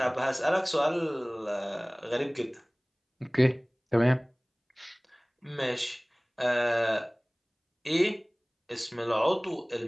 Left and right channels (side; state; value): both; identical; correlation 1.00